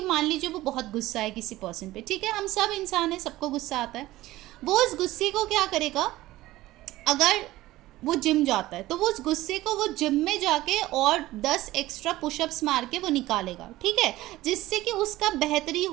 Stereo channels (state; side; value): quieter; left; 16.8 dB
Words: मान लीजिए वो बहुत गुस्सा है किसी पर्सन पे, ठीक है, हम सब इंसान हैं, सबको गुस्सा आता है। वो उस गुस्से को क्या करेगा, अगर वो जिम जाता है तो वो उस गुस्से को वो जिम में जाके और 10 एक्स्ट्रा पुशअप्स मार के वो निकालेगा, ठीक है, जिससे कि उसका बेहतरी